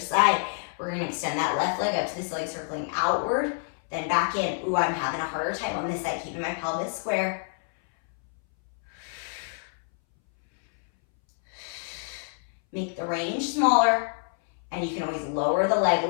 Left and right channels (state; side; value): silent; right; 60 dB below the other